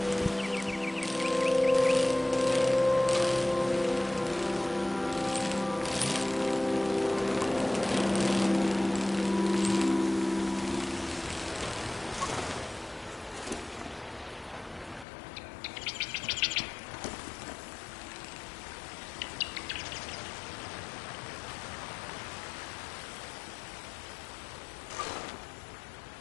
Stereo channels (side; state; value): right; drops out; at 15.1 s